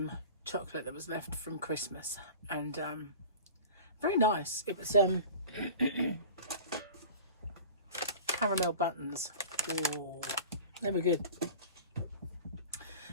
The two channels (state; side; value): inverted; both; correlation -0.38